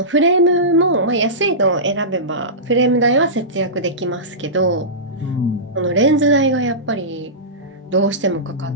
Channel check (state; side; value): normal; both; correlation -0.19